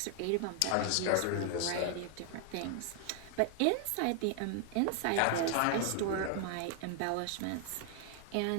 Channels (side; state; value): both; different; correlation 0.00